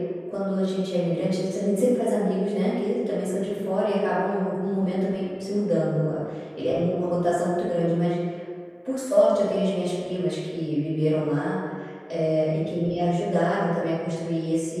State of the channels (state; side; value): identical; both; correlation 1.00